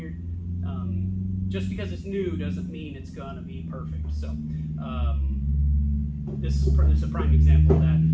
Just because it's new doesn't mean it's gonna be perfect. So this is a prime example of that.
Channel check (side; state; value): both; identical; correlation 1.00